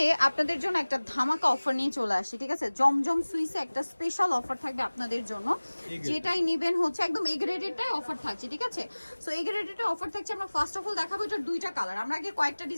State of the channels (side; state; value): both; inverted; correlation -1.00